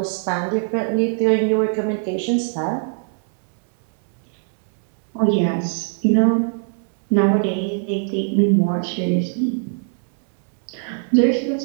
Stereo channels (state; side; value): silent; left; digital silence